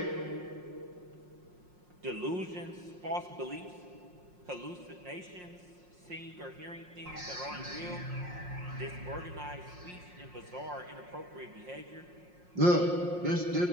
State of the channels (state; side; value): late; left; 5.6 ms